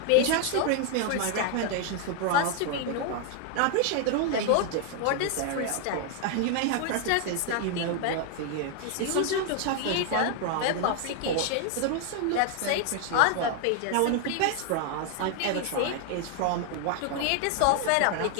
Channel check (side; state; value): both; different; correlation 0.00